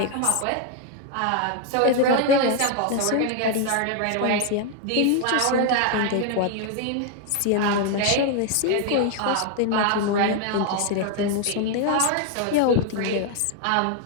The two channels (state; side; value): different; both; correlation 0.00